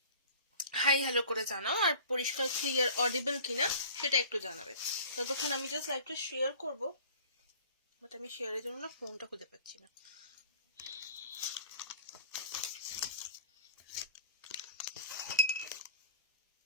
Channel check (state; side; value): inverted; both; correlation -0.44